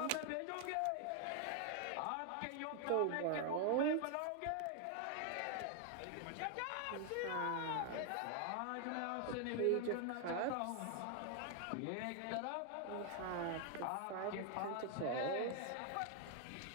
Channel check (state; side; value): different; both; correlation 0.00